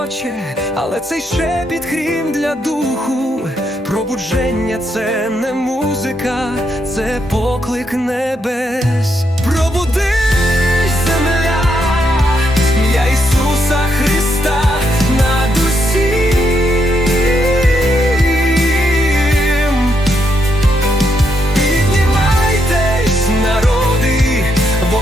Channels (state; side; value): normal; both; correlation 0.78